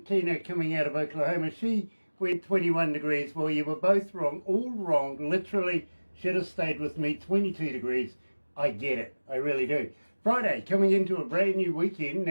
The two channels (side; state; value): both; inverted; correlation -1.00